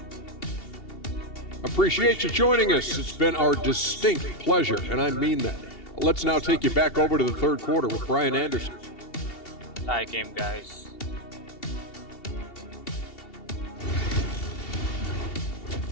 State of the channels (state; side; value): late; right; 2.7 ms